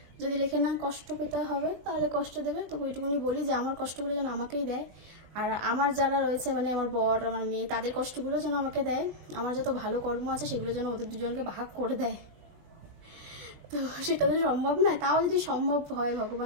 যদি লেখে না কষ্ট পেতে হবে তাহলে কষ্ট দেবে। তো ওইটুকুনি বলি যে আমার কষ্টগুলো যেন আমাকেই দেয়, আর আমার যারা রয়েছে মানে আমার বর, আমার মেয়ে, তাদের কষ্টগুলো যেন আমাকে দেয়, আমার যত ভালো কর্ম আছে সেগুলো যেন ওদের দুজনকে ভাগ করে দেয়। তো সেটা তো সম্ভব না, তাও যদি সম্ভব হয়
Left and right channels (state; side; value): late; left; 20 ms